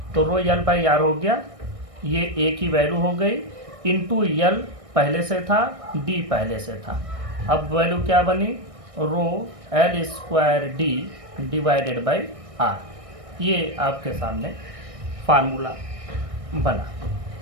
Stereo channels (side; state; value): left; late; 1.6 ms